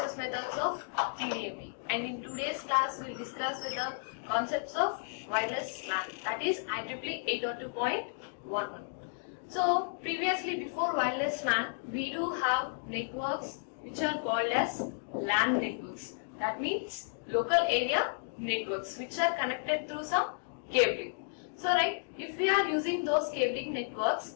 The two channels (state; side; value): silent; right; digital silence